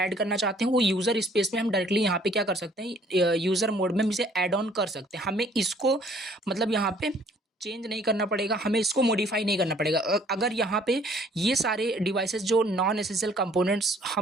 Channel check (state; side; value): normal; both; correlation 0.59